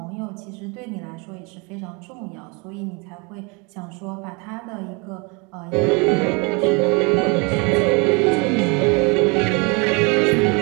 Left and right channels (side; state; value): left; quieter; 30.4 dB